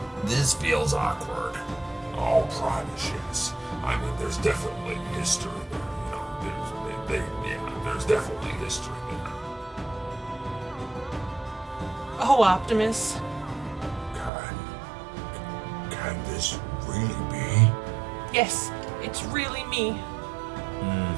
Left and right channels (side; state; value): left; drops out; at 14.3 s